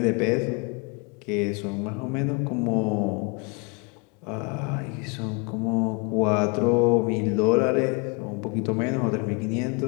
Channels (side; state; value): right; quieter; 32.4 dB